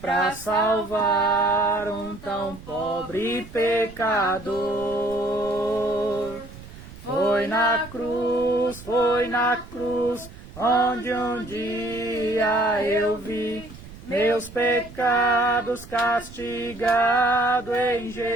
para salvar um tão pobre pecador. Foi na cruz, onde um dia eu vi meus pecados castigados em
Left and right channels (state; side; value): noise; right; rumble, 17 dB below the sound